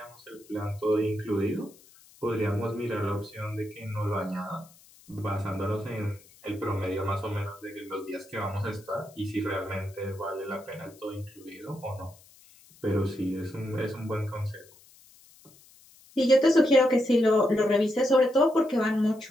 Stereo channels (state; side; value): noise; left; hiss, 26 dB below the sound